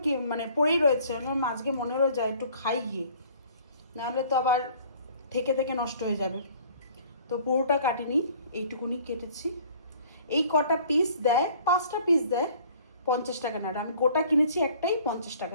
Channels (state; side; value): inverted; both; correlation -0.53